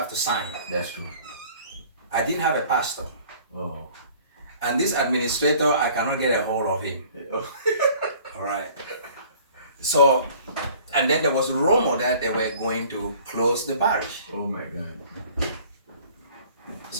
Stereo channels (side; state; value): both; inverted; correlation -0.52